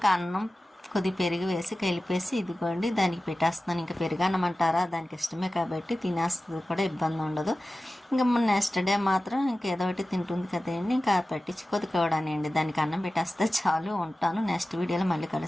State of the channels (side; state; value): both; normal; correlation 0.95